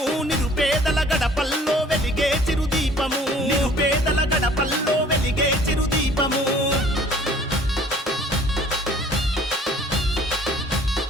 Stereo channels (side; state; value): both; normal; correlation 0.53